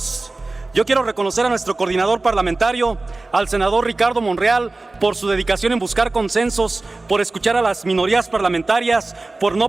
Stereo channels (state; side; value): quieter; left; 3.2 dB